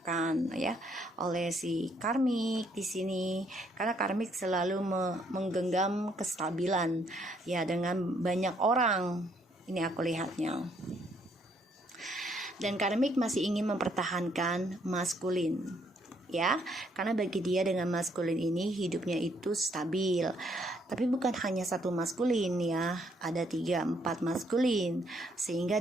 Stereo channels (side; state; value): both; normal; correlation 0.69